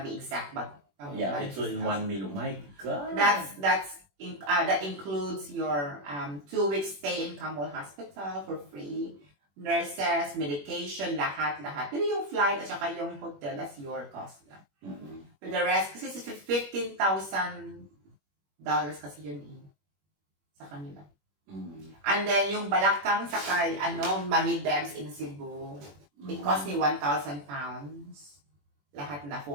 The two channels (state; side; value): late; left; 21 ms